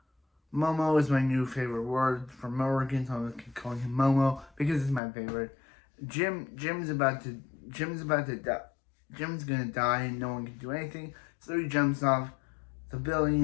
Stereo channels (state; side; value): drops out; right; at 5.0 s